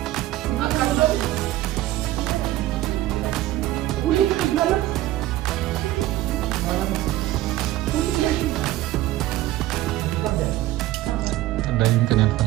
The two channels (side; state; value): left; quieter; 15.4 dB